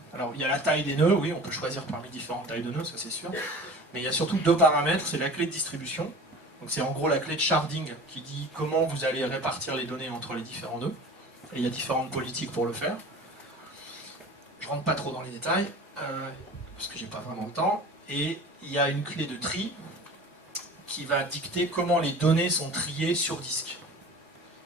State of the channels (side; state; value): both; normal; correlation 0.40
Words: Alors, il y a la taille des nœuds, oui, on peut choisir parmi différentes tailles de nœuds, ça c'est sûr. Mais il y a surtout 2 paramètres, c'est la clé de distribution. Donc c'est en gros la clé de sharding qui dit comment vous allez répartir les données entre les différents nœuds. Et il y a différentes politiques pour le faire. Je ne rentre pas trop dans les détails, parce que j'ai pas vraiment le temps. Et il y a une clé de tri qui va dicter comment les données sont triées sur disque.